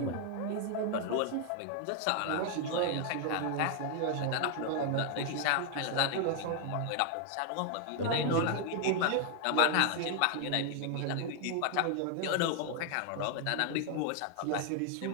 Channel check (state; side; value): different; both; correlation 0.00